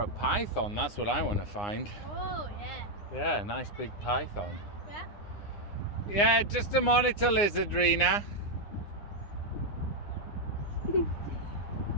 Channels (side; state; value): right; late; 9.8 ms